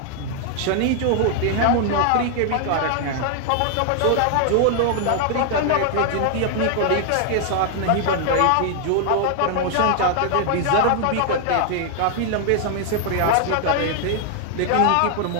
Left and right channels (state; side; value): different; both; correlation 0.00